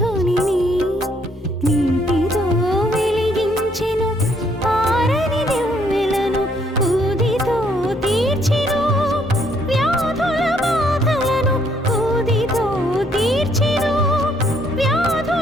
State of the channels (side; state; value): both; normal; correlation 0.68